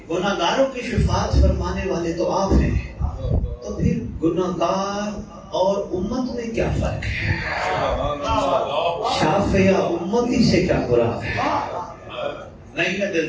گناہگاروں کی شفاعت فرمانے والے تو آپ ہیں, تو پھر گناہگار اور امت میں کیا فرق ہے؟ شافعیہ امتی سے کیا مراد ہے؟ نہیں ہے دل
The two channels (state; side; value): identical; both; correlation 1.00